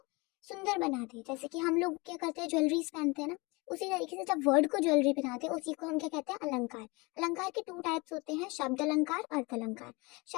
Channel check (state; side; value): quieter; right; 26.1 dB